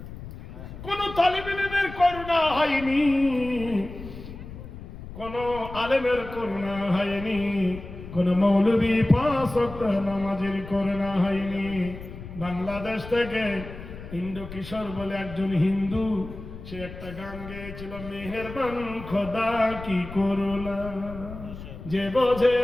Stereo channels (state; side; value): noise; left; rumble, 13 dB below the sound